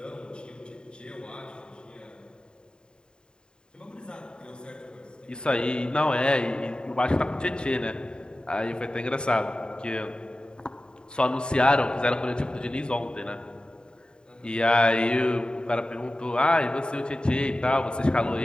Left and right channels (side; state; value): right; late; 0.049 ms